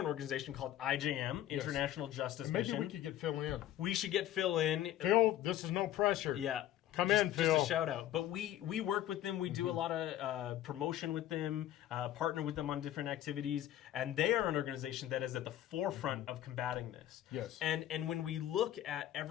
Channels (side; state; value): right; quieter; 12.6 dB